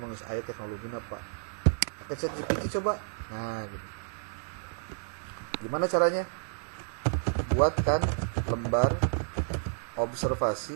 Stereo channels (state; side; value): silent; left; 57 dB below the other